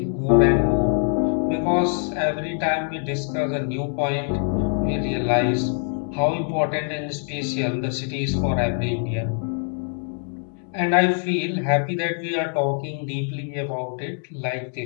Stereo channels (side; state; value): right; silent; 56 dB below the other